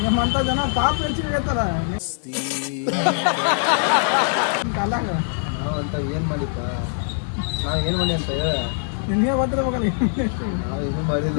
ನಿಮ್ಮಂಥ ಜನ ಪಾಪ ಹೆಚ್ಚಿಗೆ ಐತಲ್ಲ ಕಾಲಾಗ. ನಾವು ಅಂತ ಏನು ಮಾಡಿಪ್ಪ? ನಾವು ಏನು ಮಾಡಿ ಅಂತ ಹೇಳ. ನಿನ್ನೆ ಬರ್ತಿರ್ಬೇಕಲ್ಲ. ನಾವು ಏನೂ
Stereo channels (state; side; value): silent; right; digital silence